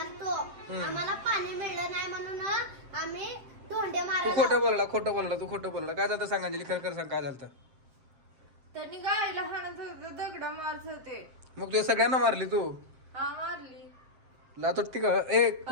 आम्हाला पाणी मिळलं नाही म्हणून आम्ही धोंडे तू मारला. खोटं बोलला तू खोटं बोलला. काय झालं सांग अंजली, खरं सांग काय झालं? त्यांनी गायला हाणत होते, दगडा मारत होते. मग तू सगळ्यांना मारली तू? हा मारली. लातोटी का? ए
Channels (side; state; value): left; late; 7.6 ms